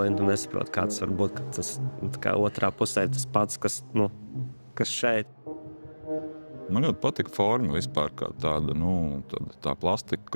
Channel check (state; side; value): inverted; both; correlation -1.00